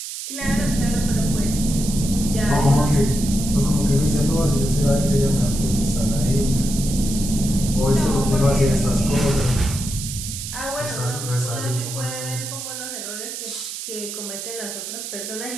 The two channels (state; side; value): noise; right; hiss, 8 dB below the sound